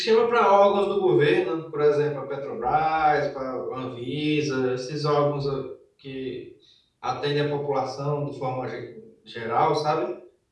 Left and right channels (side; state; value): both; identical; correlation 1.00